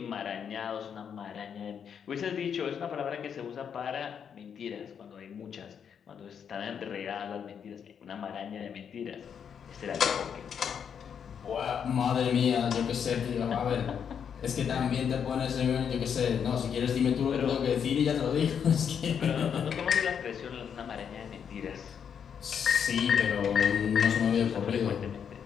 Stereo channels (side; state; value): right; quieter; 7.6 dB